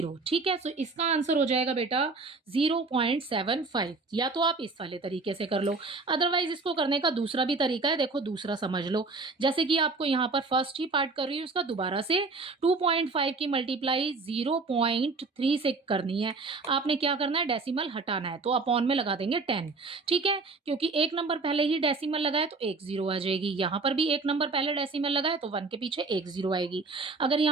ठीक है। सो इसका आंसर हो जाएगा बेटा 0.75। या तो आप इस वाले तरीके से कर लो, अदरवाइज इसको करने का दूसरा भी तरीका है। देखो दूसरा समझ लो, जैसे कि आपको यहाँ पर फर्स्ट ही पार्ट कर रही हूँ, उसका दोबारा से 2.5 की मल्टीप्लाई 0.3 से करनी है। आपने क्या करना है, डेसिमल हटाना है, तो अपॉन में लगा देंगे 10, ठीक है। क्योंकि एक नंबर पहले ही डेसिमल लगाए तो एक 0 आ जाएगी। यहाँ पर भी एक नंबर पहले डेसिमल लगाए तो 1 के पीछे एक 0 आएगी। अगर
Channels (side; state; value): left; quieter; 3.9 dB